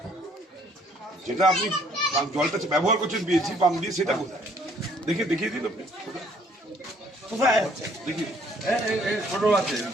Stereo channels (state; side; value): normal; both; correlation 0.62